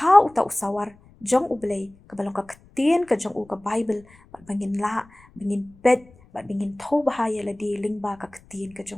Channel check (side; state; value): left; noise; rumble, 27 dB below the sound